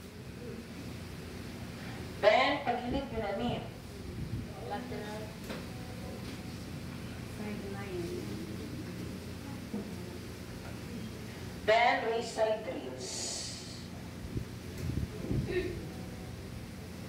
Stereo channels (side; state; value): both; identical; correlation 1.00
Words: Then pagilid yun na niya. Lateral. Sideline. Then raise side rails.